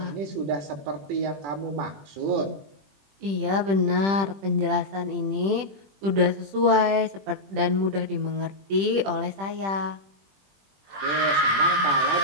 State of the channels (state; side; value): late; left; 21 ms